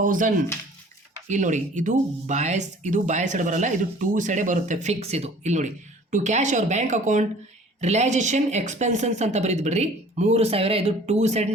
ಇಲ್ಲಿ ನೋಡಿ ಇದು ಬಾಯ್ ಸೈಡ್ ಬರಲ್ಲ, ಇದು ಟೂ ಸೈಡೇ ಬರುತ್ತೆ, ಫಿಕ್ಸ್ ಇದು. ಇಲ್ಲಿ ನೋಡಿ to cash or bank account realisation ಎಕ್ಸ್ಪೆನ್ಸನ್ಸ್ ಅಂತ ಬರೀದು ಬಿಡ್ರಿ 3,000, ಇದು ಟೂ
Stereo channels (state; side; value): normal; both; correlation 0.50